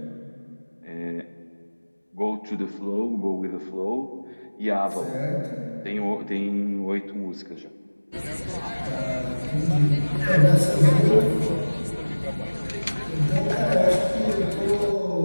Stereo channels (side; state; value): both; inverted; correlation -1.00